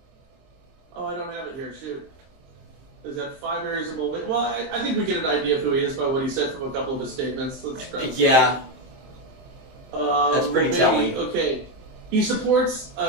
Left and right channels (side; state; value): left; late; 23 ms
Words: Oh, I don't have it here. Shoot. Is that 5 areas of Mulvaney? Well, I think we get an idea of who he is by what he said from a couple of his statements. Let's try. Yeah, that's pretty Mulvaney, telling. Okay, he supports